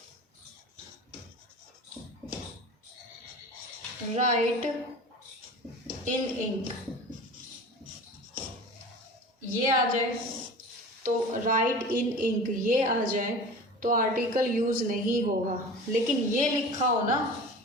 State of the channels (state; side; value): normal; both; correlation 0.37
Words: राइट इन इंक, ये आ जाए तो राइट इन इंक ये आ जाए तो आर्टिकल यूज नहीं होगा। लेकिन ये लिखा हो ना,